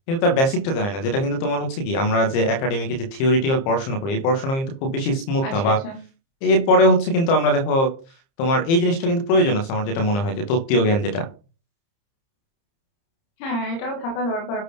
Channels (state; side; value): late; right; 30 ms